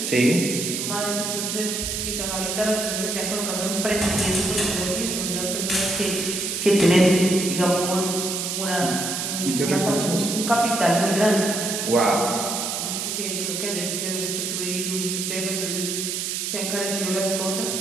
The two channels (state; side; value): noise; right; hiss, 2 dB below the sound